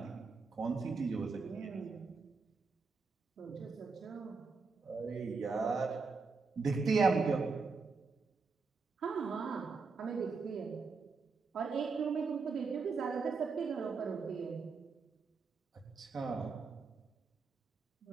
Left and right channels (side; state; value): left; quieter; 4.6 dB